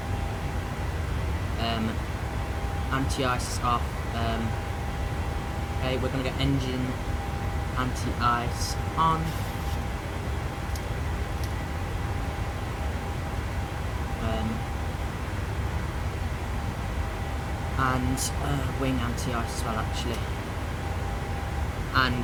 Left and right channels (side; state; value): both; identical; correlation 1.00